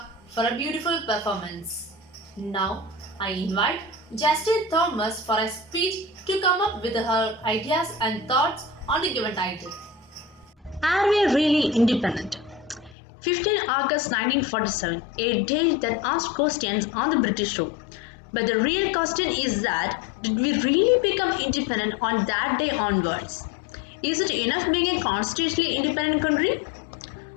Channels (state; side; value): drops out; right; at 13.0 s